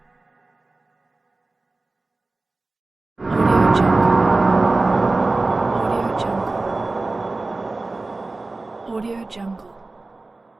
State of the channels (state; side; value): quieter; left; 3.3 dB